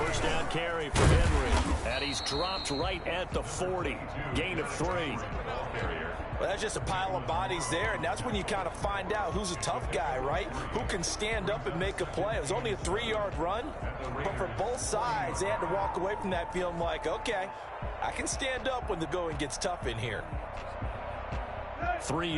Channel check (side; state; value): both; identical; correlation 1.00